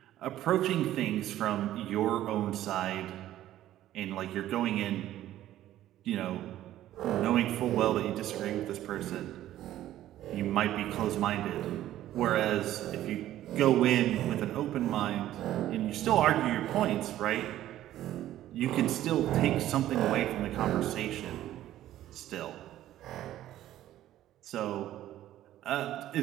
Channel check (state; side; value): quieter; left; 13.3 dB